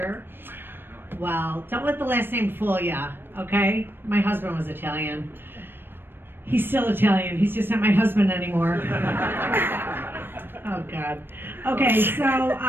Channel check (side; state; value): left; late; 0.098 ms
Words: Well, don't let the last name fool ya, okay? My husband was Italian. He's still Italian. He's just not my husband anymore. Oh God. Okay, so